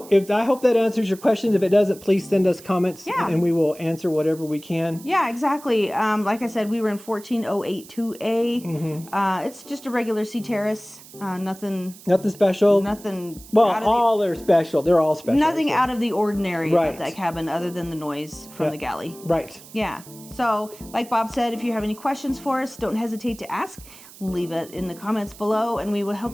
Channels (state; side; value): noise; right; hiss, 20 dB below the sound